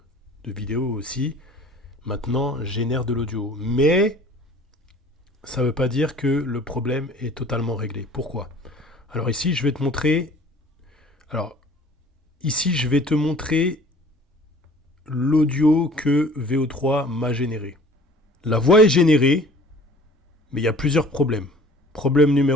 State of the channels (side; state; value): both; normal; correlation 0.49